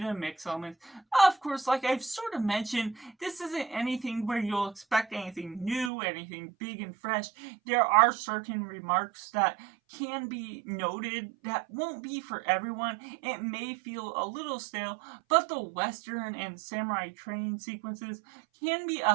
mix elements. Of course, like I've sort of mentioned, this isn't anything where you'll expect anything new, anything big and fresh. There are certain remarks that can be noted that won't be for everyone. It may feel a little stale, but the Western and samurai training sequences can be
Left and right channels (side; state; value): left; drops out; at 5.9 s